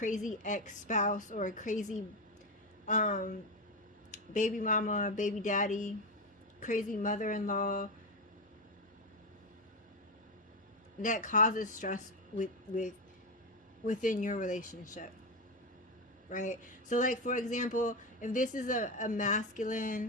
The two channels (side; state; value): both; normal; correlation 0.12